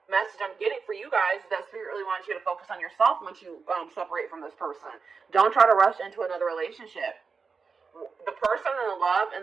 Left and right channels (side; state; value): left; quieter; 5.1 dB